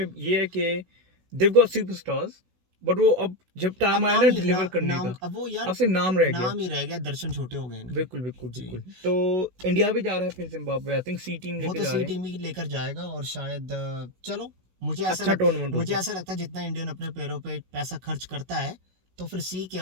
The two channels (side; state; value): left; late; 16 ms